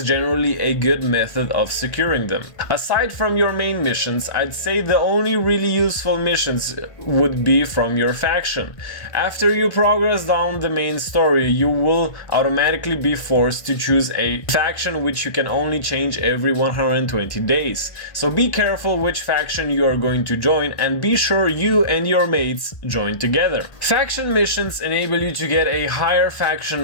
generally a good method of securing them. Aside from your main missions, I'd say the only really useful missions would be from your faction. After you progress down the main story, you will automatically be forced to choose a faction which you can only change every 120 days. So be careful which faction you are going to join and be sure you and your mates join together. Faction missions enable you to get a higher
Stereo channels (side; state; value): right; late; 1.1 ms